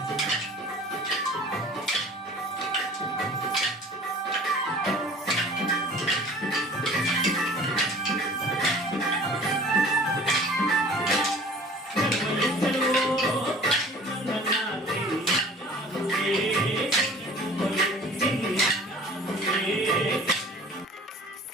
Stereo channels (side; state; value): both; normal; correlation 0.46